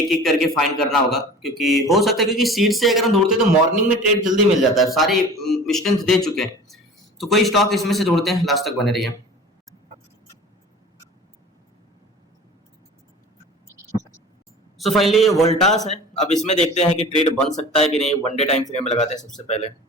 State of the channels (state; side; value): normal; both; correlation 0.40